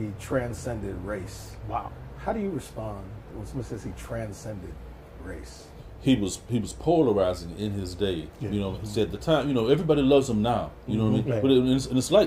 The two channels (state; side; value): identical; both; correlation 1.00